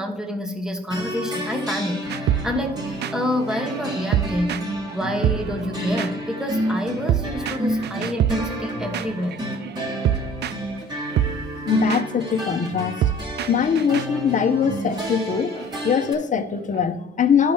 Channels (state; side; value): normal; both; correlation 0.51